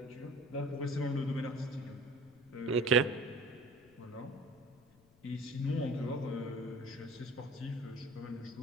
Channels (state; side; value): noise; left; rumble, 28 dB below the sound